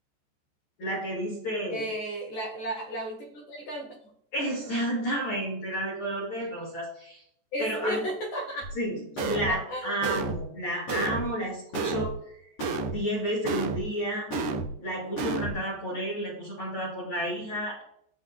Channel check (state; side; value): late; right; 14 ms